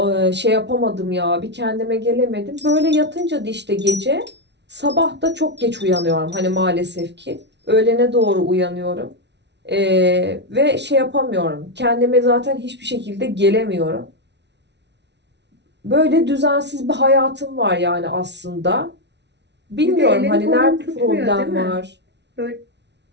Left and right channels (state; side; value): late; left; 0.50 ms